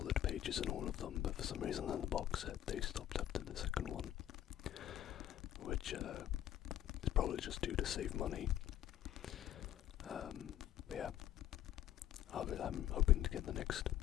pages in all of them, but for some reason in the box set they stopped after the second one. Which is probably just due to save money. But yeah, I'm hoping to get the next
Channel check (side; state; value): right; quieter; 12.0 dB